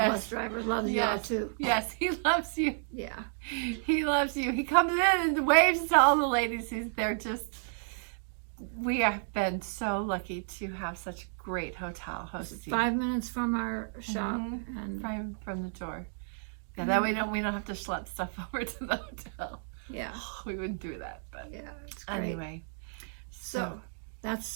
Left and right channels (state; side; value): silent; left; digital silence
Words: bus driver, loves y'all too. Yes, he loves you. Yeah. He loves you. He comes in and waves to all the ladies. We have been so lucky to have such great hotel hosts. 5 minutes from our shop, and From the door. Yeah, that way we don't have to schlep stuff over to the hotel. yeah, We wouldn't do that, but yeah, it's great. anyway. So